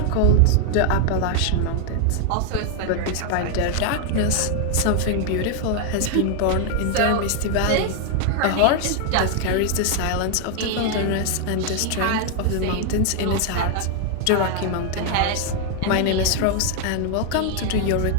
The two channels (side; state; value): both; different; correlation 0.00